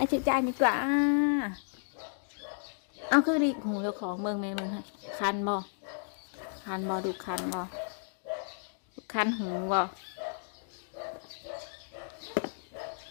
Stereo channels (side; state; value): right; silent; digital silence